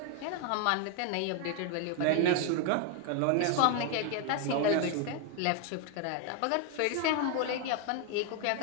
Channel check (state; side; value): different; both; correlation 0.01